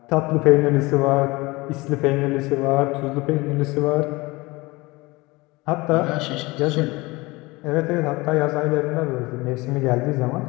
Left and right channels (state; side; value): quieter; right; 22.7 dB